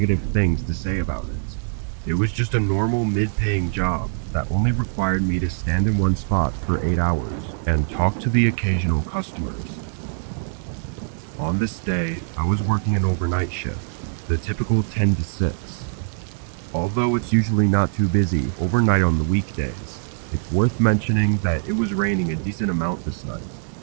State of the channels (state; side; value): silent; left; 61 dB below the other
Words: things to say about it. It was just a normal mid-paying job that only required me to stand in one spot for 8 hours and talk to the occasional customers. On this day, I was working an overnight shift, the typical 10 to 6. Although it's usually not too busy overnight on the weekdays, it's worth mentioning that it was raining a decent amount this night,